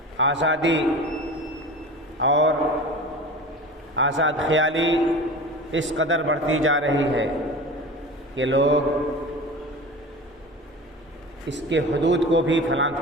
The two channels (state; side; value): normal; both; correlation 0.34